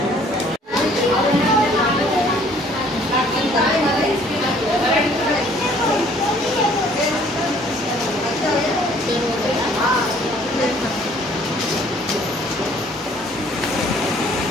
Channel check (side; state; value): both; normal; correlation 0.58